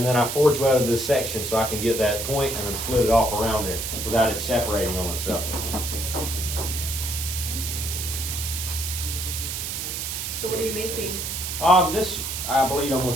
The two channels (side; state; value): right; noise; hiss, 4 dB below the sound